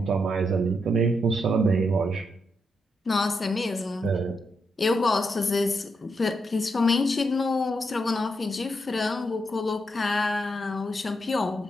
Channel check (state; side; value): normal; both; correlation 0.82